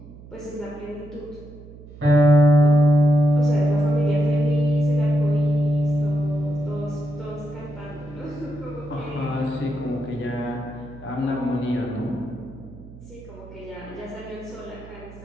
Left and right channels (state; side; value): noise; right; hum, 18 dB below the sound